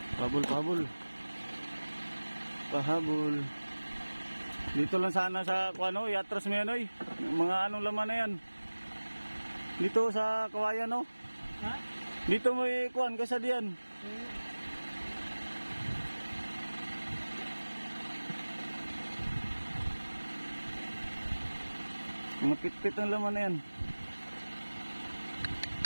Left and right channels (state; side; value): inverted; both; correlation -1.00